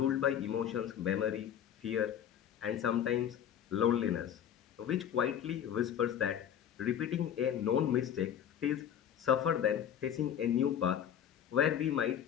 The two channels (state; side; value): quieter; right; 9.4 dB